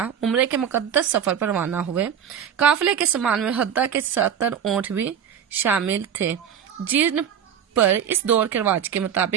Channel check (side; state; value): left; quieter; 8.6 dB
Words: عمرے کے مقدس سفر پر روانہ ہوئے۔ قافلے کے سامان میں حدہ کے 70 اونٹ بھی شامل تھے، جن پر اس دور کے رواج کے